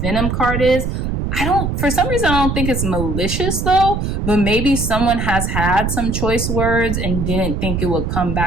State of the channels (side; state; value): right; noise; rumble, 2 dB below the sound